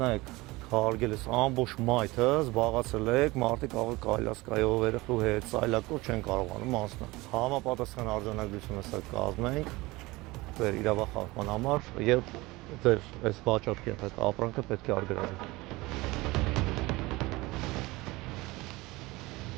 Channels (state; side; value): quieter; left; 21.4 dB